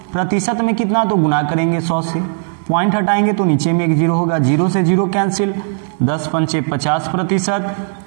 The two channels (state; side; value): silent; left; digital silence